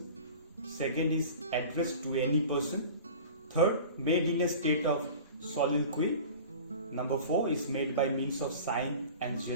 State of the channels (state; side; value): inverted; both; correlation -0.39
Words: Second is addressed to any person. Third, made in a state of soliloquy. Number 4 is made by means of sign and